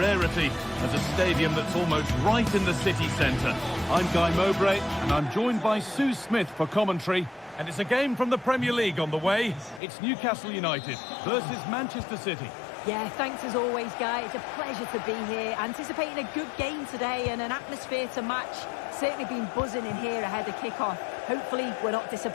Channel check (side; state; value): right; drops out; at 9.8 s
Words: as a stadium that's almost right in the city centre. I'm Guy Mowbray, and I'm joined by Sue Smith for commentary. And it's a game from the Premier League on the way. It's Newcastle United versus Manchester City. Yeah, thanks as always, Guy. It's a pleasure to be here. Anticipating a good game today and an atmosphere to match. Certainly been buzzing in here ahead of kick-off. Hopefully, we're not